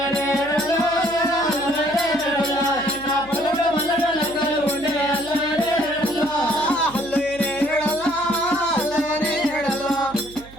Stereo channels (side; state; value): right; noise; hum, 20 dB below the sound